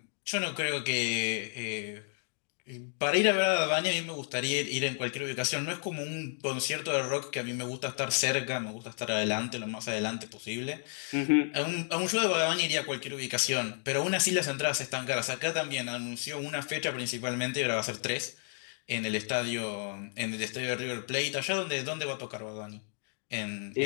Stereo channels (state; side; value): silent; right; 56 dB below the other